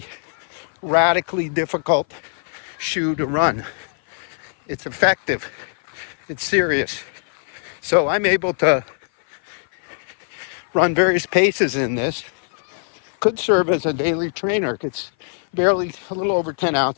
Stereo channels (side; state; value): right; silent; 56 dB below the other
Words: radically difficult shoe to run. It's effective. It's serious. So I'm able to run various paces in this. Could serve as a daily trainer. It's barely a little over 10